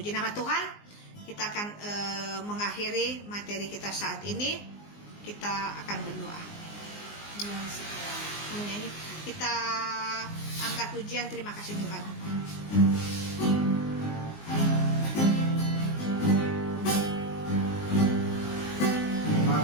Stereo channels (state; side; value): late; right; 19 ms